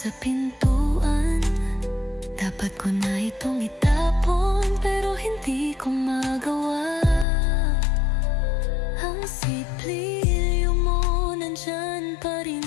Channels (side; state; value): right; drops out; at 7.2 s